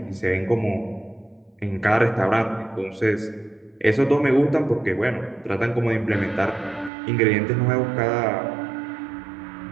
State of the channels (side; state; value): left; drops out; at 6.9 s